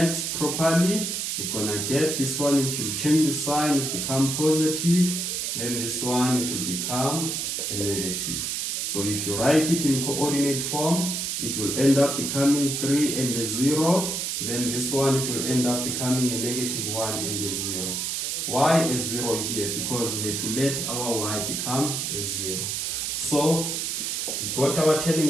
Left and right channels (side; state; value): right; noise; hiss, 2 dB below the sound